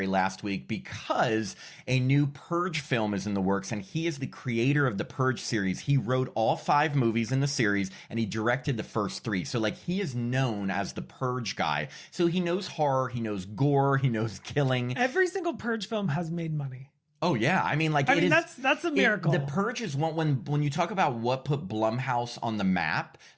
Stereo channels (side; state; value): both; identical; correlation 1.00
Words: last week because a new Purge film is in the works. And he is the creator of the Purge series. He wrote all 5 movies in the series and he directed the first 3. So like he is known as the Purge guy. So he knows horror, he knows gore, he knows killing. Every single Purge film has made money. Oh yeah, I mean, like that's a miracle. The Purge is one when you talk about what put Blumhouse on the map.